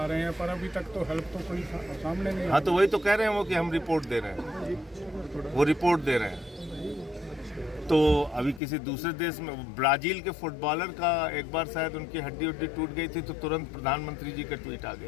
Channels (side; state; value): right; drops out; at 8.6 s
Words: रहे हैं, पर अभी तक तो हेल्प तो कोई सामने नहीं। हाँ, तो वही तो कह रहे हैं वो कि हम रिपोर्ट दे रहे हैं, वो रिपोर्ट दे रहे हैं। तो अभी किसी दूसरे देश में, ब्राजील के फुटबॉलर का एक बार शायद उनकी हड्डी उड्डी टूट गई थी तो तुरंत प्रधानमंत्री जी का ट्वीट आ